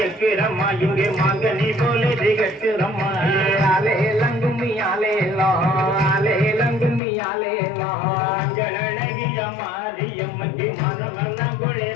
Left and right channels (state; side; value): drops out; right; at 7.0 s